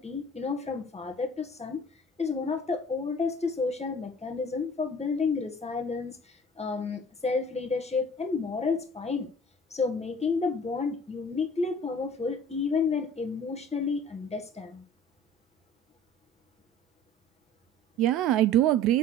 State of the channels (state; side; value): normal; both; correlation 0.46